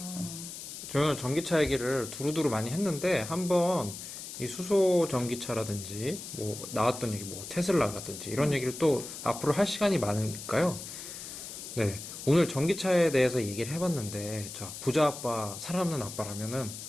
저는 전기차 얘기를 두루두루 많이 했는데 한번 이 수소 전기차라든지 뭐 나왔던 얘기 뭐 테슬라라든지 이런 얘기를 또 앞으로 할 시간이 많으니까요. 네. 오늘 전기차에 대해서 얘기를 해봤는데 자, 부자 아빠, 살아남는 아빠라면은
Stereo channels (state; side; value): noise; left; hiss, 10 dB below the sound